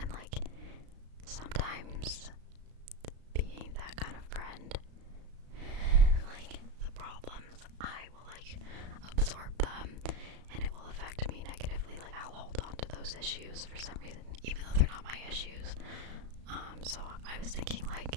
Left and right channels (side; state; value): left; late; 35 ms